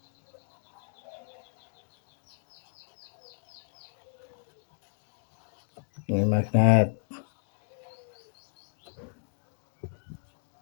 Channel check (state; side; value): silent; right; digital silence